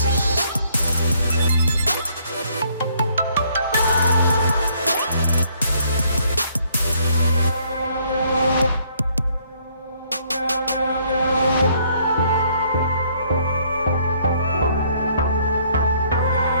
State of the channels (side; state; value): both; inverted; correlation -0.66